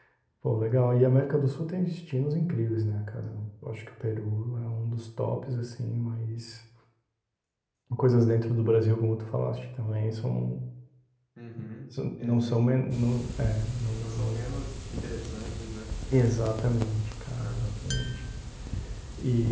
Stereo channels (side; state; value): both; identical; correlation 1.00